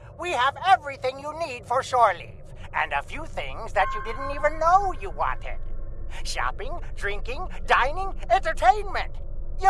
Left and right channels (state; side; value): identical; both; correlation 1.00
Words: We have everything you need for shore leave, and a few things that you didn't even know you wanted. Shopping, drinking, dining, entertainment.